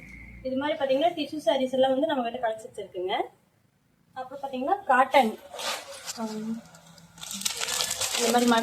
இது மாதிரி பார்த்தீங்கன்னா டிஷ்யூ சாரீஸ் எல்லாம் வந்து நம்ம கிட்ட கலெக்ஷன்ஸ் இருக்குங்க. அப்புறம் பார்த்தீங்கன்னா காட்டன், இந்த மாதிரி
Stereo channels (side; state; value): both; identical; correlation 1.00